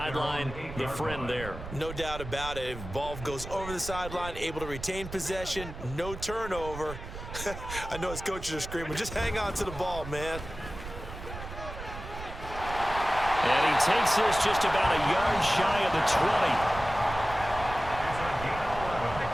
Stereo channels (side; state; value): right; noise; rumble, 11 dB below the sound